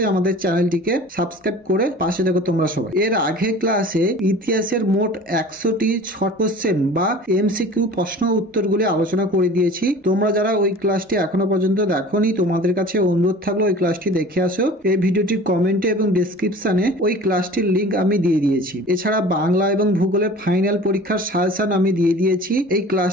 আমাদের চ্যানেলটিকে সাবস্ক্রাইব করে পাশে থাকো তোমরা সবাই। এর আগের ক্লাসে ইতিহাসের মোট 100টি শর্ট কোশ্চেন বা এমসিকিউ প্রশ্ন উত্তরগুলি আলোচনা করে দিয়েছি। তোমরা যারা ওই ক্লাসটি এখনো পর্যন্ত দেখোনি তোমাদের কাছে অনুরোধ থাকলে ওই ক্লাসটি দেখে আসো। এই ভিডিওটির কমেন্টে এবং ডেসক্রিপশনে ওই ক্লাসটির লিংক আমি দিয়ে দিয়েছি। এছাড়া বাংলা এবং ভূগোলের ফাইনাল পরীক্ষার সাজেশন আমি দিয়ে দিয়েছি। এই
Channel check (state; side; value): normal; both; correlation 0.42